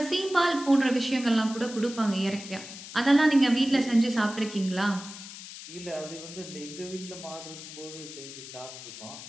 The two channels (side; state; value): left; noise; hiss, 13 dB below the sound